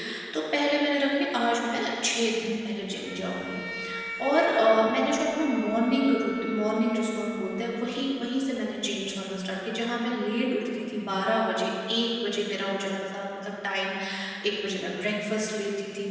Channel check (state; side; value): identical; both; correlation 1.00